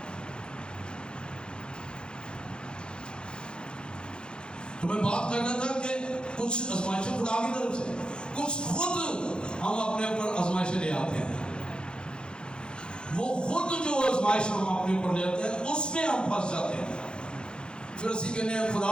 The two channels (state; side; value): late; right; 0.050 ms